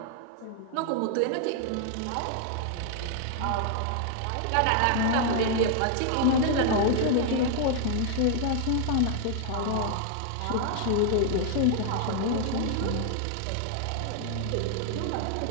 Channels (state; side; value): different; both; correlation 0.00